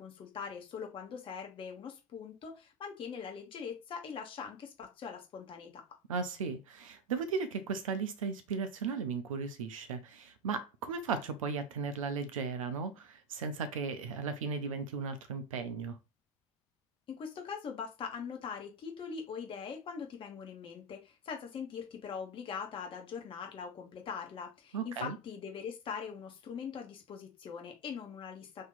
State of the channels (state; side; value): normal; both; correlation 0.07